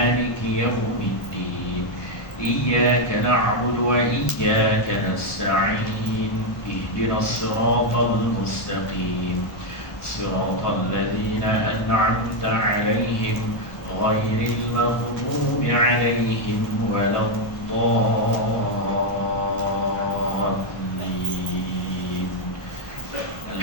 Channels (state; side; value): late; right; 1.1 ms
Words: yaumiddin. Iyyaka na'budu wa iyyaka nasta'in. Ihdinas siratal mustaqim. صراط الذين أنعمت عليهم غير المغضوب عليهم ولا الضالين.